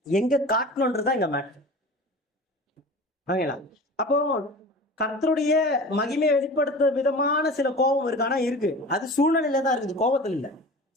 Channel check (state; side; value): normal; both; correlation 0.37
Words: எங்க காட்டணும்ன்றதுதான் இங்க மேட்டர். ஓகேங்களா? அப்போ கர்த்தருடைய மகிமையை வெளிப்படுத்த விதமான சில கோபம் இருக்கு. ஆனா இருக்கு, அது சூழ்நிலையில தான் இருக்குது, கோபத்தில் இல்லை.